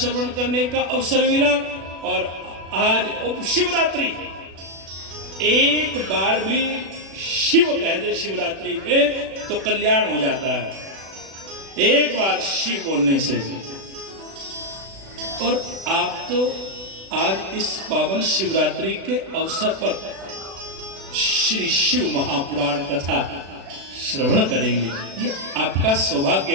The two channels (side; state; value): left; late; 36 ms